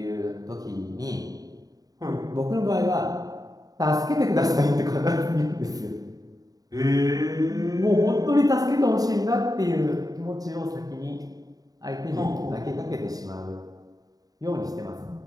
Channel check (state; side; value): late; left; 0.18 ms